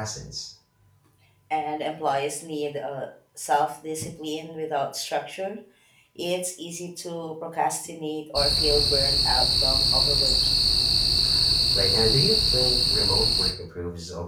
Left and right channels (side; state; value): both; identical; correlation 1.00